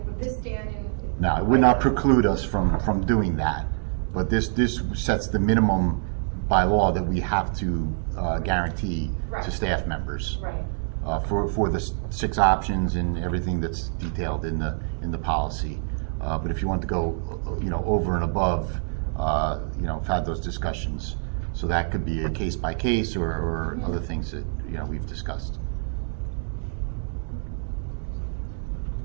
this stand in? No, it would not preclude us from doing that, but this sets the minimum by law that we have to guarantee to staff members. Right. For the 6 options and everything that's detailed in the policy. But if you want to go, over and above, have had those discussions. So that could be a case by case or other things that we've discussed.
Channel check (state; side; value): silent; left; 60 dB below the other